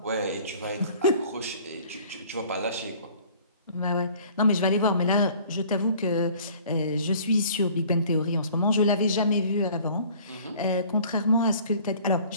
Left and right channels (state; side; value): inverted; both; correlation -0.51